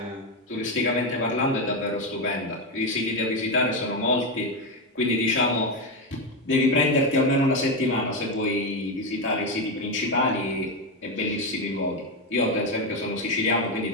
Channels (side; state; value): both; normal; correlation 0.10